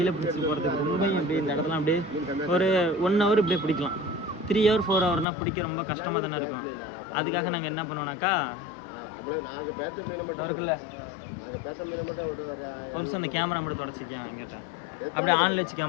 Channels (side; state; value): right; drops out; at 5.2 s